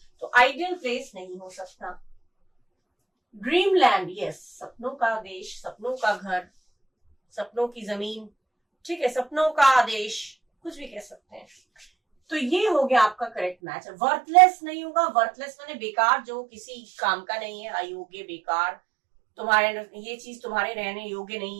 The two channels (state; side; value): drops out; left; at 13.6 s